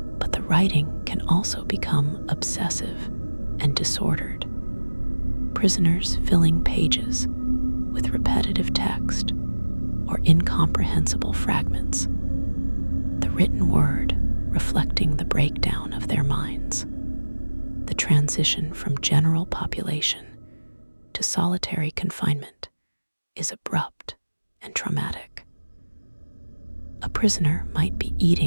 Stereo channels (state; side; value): inverted; both; correlation -1.00